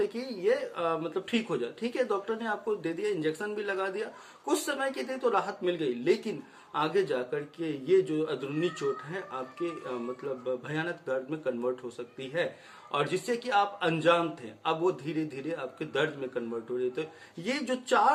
कि ये मतलब ठीक हो जाए, ठीक है, डॉक्टर ने आपको दे दिया, इंजेक्शन भी लगा दिया, कुछ समय के लिए तो राहत मिल गई, लेकिन आगे जाकर के ये जो अंदरूनी चोट है आपके मतलब भयानक दर्द में कन्वर्ट हो सकती है, और जिससे कि आप अनजान थे, अब वो धीरे धीरे आपके दर्द में कन्वर्ट हो रही। तो ये जो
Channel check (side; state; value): both; identical; correlation 1.00